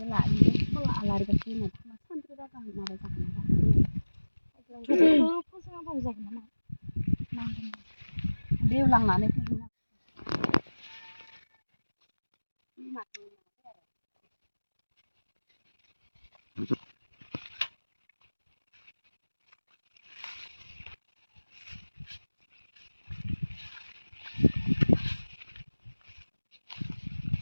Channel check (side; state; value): both; inverted; correlation -1.00